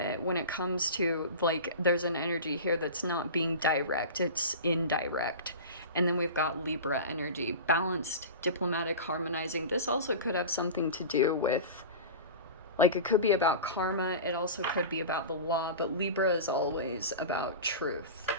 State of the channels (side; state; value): both; inverted; correlation -0.31